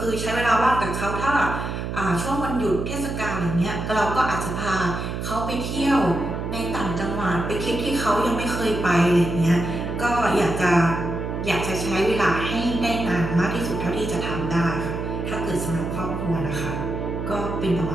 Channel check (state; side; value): noise; right; hum, 4 dB below the sound